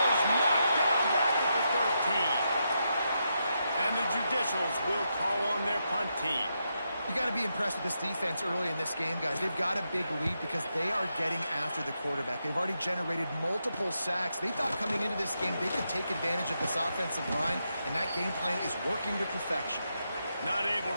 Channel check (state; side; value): inverted; both; correlation -0.83